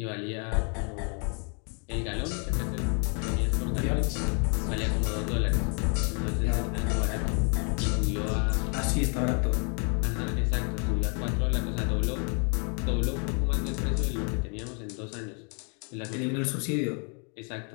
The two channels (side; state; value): right; quieter; 38.4 dB